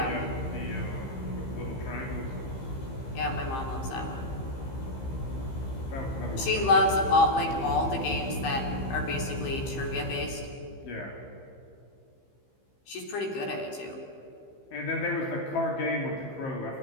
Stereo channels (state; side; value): late; right; 15 ms